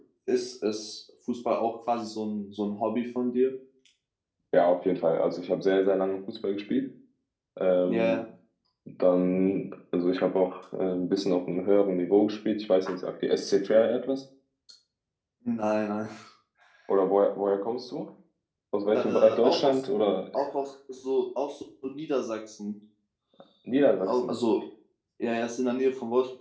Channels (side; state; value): both; identical; correlation 1.00